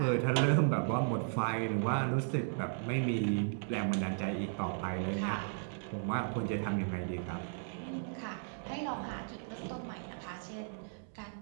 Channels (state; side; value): silent; left; digital silence